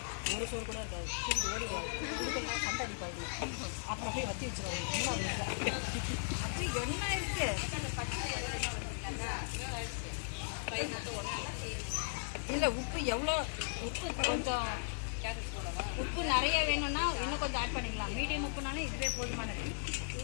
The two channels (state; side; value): silent; right; 53 dB below the other